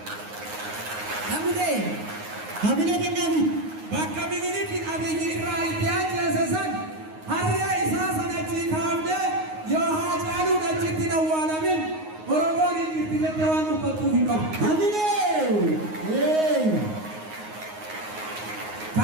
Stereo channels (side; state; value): left; late; 9.5 ms